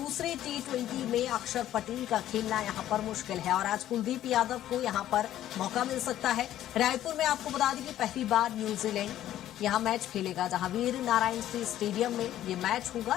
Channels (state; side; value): quieter; right; 12.5 dB